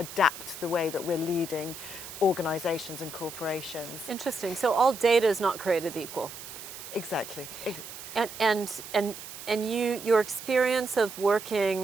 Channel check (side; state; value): right; noise; hiss, 12 dB below the sound